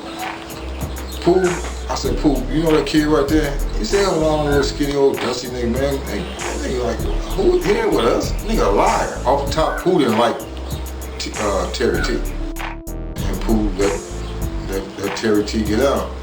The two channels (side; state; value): both; identical; correlation 1.00